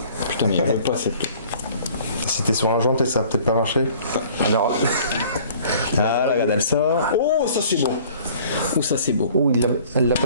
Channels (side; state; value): both; inverted; correlation -0.52